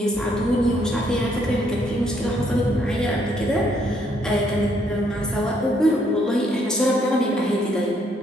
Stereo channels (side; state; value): both; normal; correlation 0.70